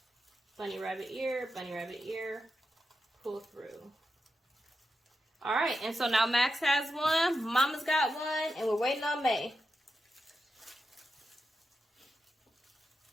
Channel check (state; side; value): normal; both; correlation 0.88